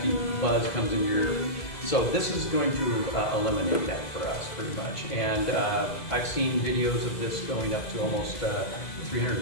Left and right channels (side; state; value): right; late; 2.0 ms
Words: buzz comes in your. So this is going to eliminate that for us pretty much. And I've seen videos of this going up to almost